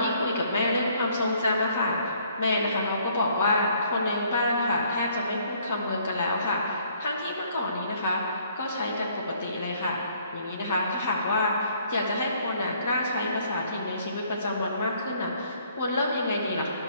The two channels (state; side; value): inverted; both; correlation -0.63